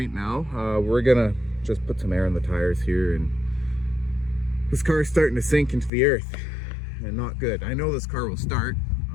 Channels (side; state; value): right; drops out; at 5.9 s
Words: now. We're gonna just put some air on the tires here, and this car is starting to sink into the earth, and not good. I know this car will start.